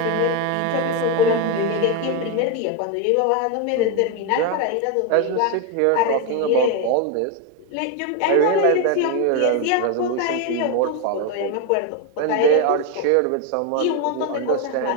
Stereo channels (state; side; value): different; both; correlation 0.02